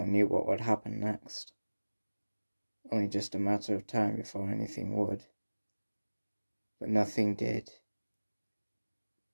knew what would happen next. Only just a matter of time before anything would. But nothing did.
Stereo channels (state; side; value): inverted; both; correlation -1.00